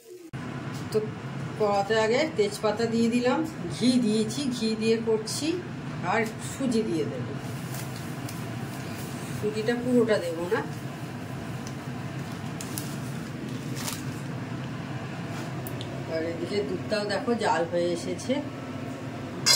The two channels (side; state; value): both; identical; correlation 1.00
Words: তো কড়াতে আগে তেজপাতা দিয়ে দিলাম, ঘি দিয়েছি, ঘি দিয়ে করছি। আর সুজি দিয়ে দেবো, সুজিটা পুরোটা দেবো না। আর এদিকে দুধটাও দেখো জাল হয়ে এসেছে।